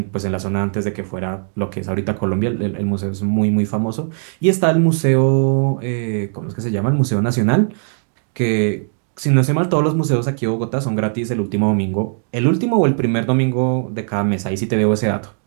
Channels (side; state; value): left; silent; 60 dB below the other